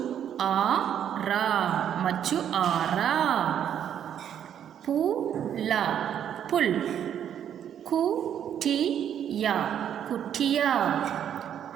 machu-ara. Pu-la, pul. Ku-ti-ya, kutiya.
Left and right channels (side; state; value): left; quieter; 9.5 dB